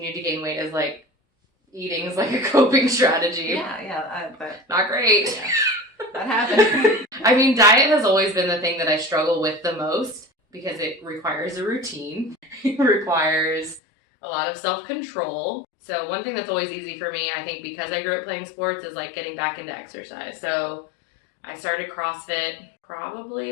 to gain weight as eating is a coping strategy. But not great. Yeah, that happens. I mean, diet has always been the thing that I struggle with the most because it requires a routine. It requires a lot of self-control. So one thing that's always easy for me, I think because I grew up playing sports, is getting back into exercise. So I started CrossFit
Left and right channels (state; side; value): drops out; right; at 13.8 s